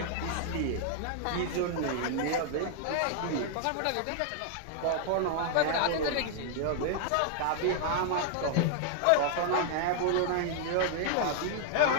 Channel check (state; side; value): different; both; correlation -0.01